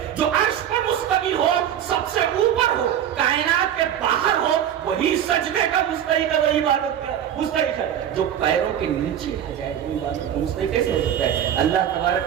جو عرش پر مستوی ہو, سب سے اوپر ہو, کائنات کے باہر ہو, وہی سجدے کا مستحق ہے, وہی عبادت کا مستحق ہے. جو پیروں کے نیچے آ جائے وہ عبادت کا مستحق کیسے ہو سکتا ہے؟ اللہ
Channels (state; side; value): quieter; left; 9.9 dB